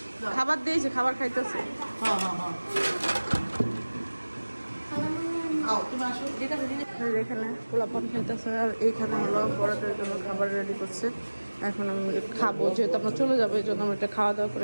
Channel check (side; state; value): both; inverted; correlation -1.00